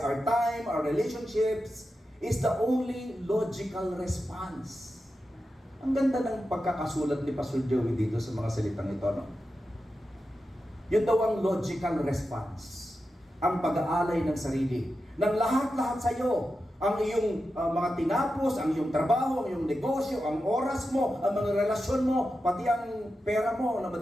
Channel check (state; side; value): normal; both; correlation 0.90